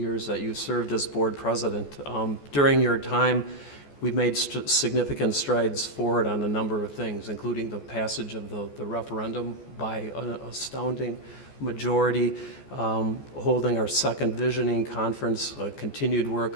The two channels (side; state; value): right; late; 14 ms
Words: that you served as board president. During your time, we've made significant strides forward on a number of things, including the passage of the referendum by an astounding majority, holding our second visioning conference, continued